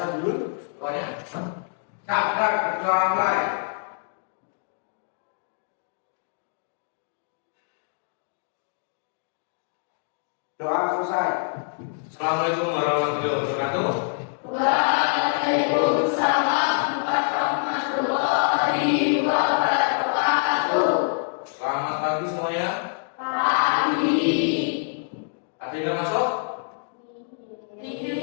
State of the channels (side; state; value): right; silent; digital silence